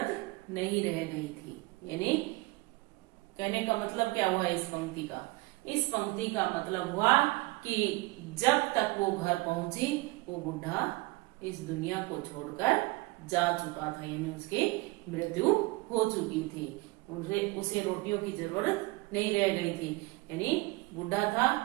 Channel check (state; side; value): quieter; left; 23.3 dB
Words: नहीं रह गई थी। यानी कहने का मतलब क्या हुआ इस पंक्ति का? इस पंक्ति का मतलब हुआ कि जब तक वो घर पहुंची वो बुढ़ा इस दुनिया को छोड़कर जा चुका था, यानी उसकी मृत्यु हो चुकी थी। उसे रोटियों की जरूरत नहीं रह गई थी, यानी बुढ़ा था